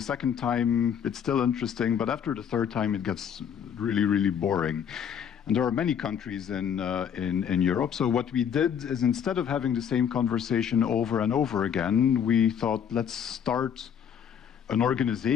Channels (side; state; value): right; quieter; 8.2 dB